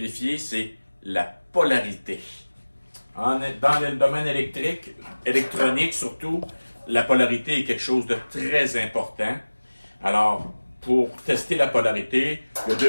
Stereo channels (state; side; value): inverted; both; correlation -1.00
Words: c'est la polarité. Dans le domaine électronique surtout, la polarité est quelque chose de très important. Alors, pour tester la polarité, il y a deux